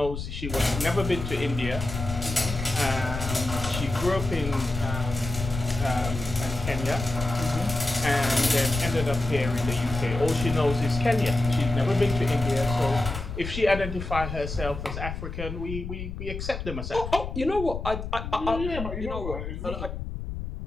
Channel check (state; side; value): noise; left; rumble, 6 dB below the sound